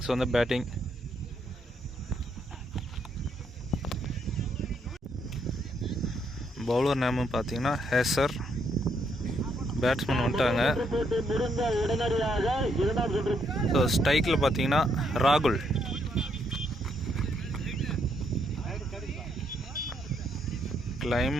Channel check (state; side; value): normal; both; correlation 0.74